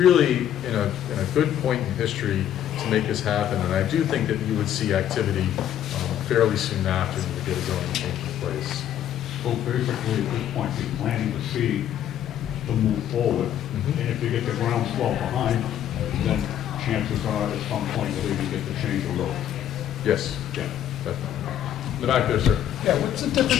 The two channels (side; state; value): right; quieter; 10.7 dB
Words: in a good point in history to make this happen, and I do think that you would see activity fairly soon after you get a zoning change in place. So basically, at this point, you're planting the seed to move forward. And if you get the groundswell behind, then chances are at some point you'll even get to change the road. Yes, Yeah. definitely. In the back there, sir. Yeah, what's the